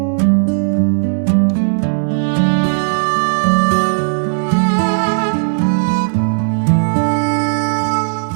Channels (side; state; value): left; silent; digital silence